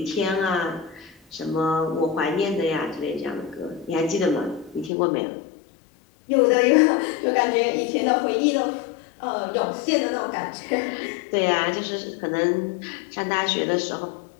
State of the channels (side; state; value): right; drops out; at 4.9 s